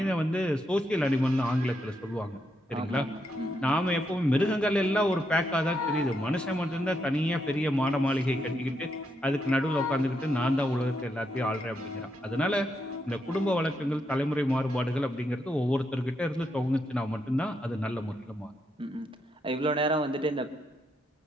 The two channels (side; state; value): both; normal; correlation 0.80